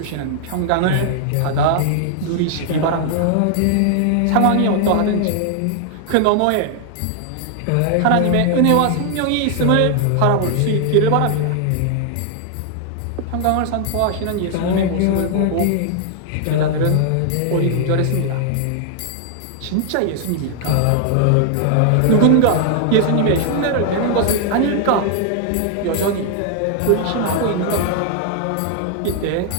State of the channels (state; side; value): different; both; correlation 0.00